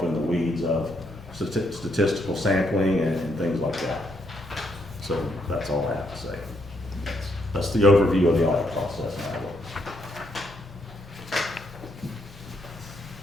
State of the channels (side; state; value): both; normal; correlation 0.76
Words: in the weeds of statistical sampling and things like that. So that's all I have to say. That's the overview of the audit process.